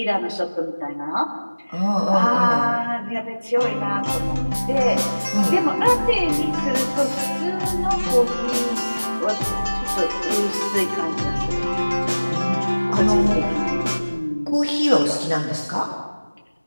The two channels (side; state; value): both; inverted; correlation -1.00